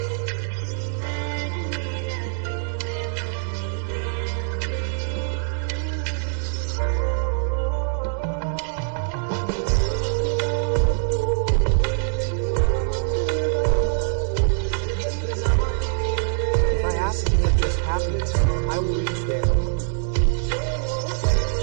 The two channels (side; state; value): left; silent; 63 dB below the other